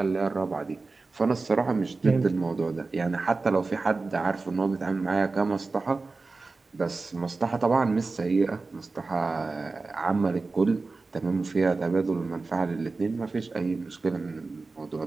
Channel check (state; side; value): quieter; left; 3.8 dB